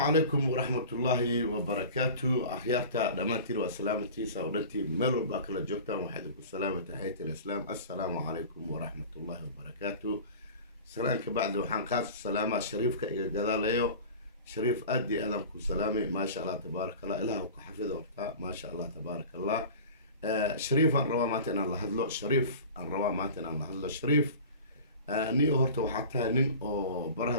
ورحمة الله وبركاته. أخيارتا دمانتين وسلامتي ساودنتي ملو باكلا جوكتا وحدكم السلامة تحية الإسلام. السلام عليكم ورحمة الله وبركاته. سلامك بعد وحان قاس السلامة شريفك إيقا قداليو شريف أدي أدمكم سلامي ما شاء الله تبارك الله إلها وكحفظه ورطا ما شاء الله تبارك الله. شريف أن روا ماتنا الله هدلو شريف أن روا ماتنا الله هدلو شريف نيو هورتا وحتى نين أو برها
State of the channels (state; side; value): inverted; both; correlation -0.38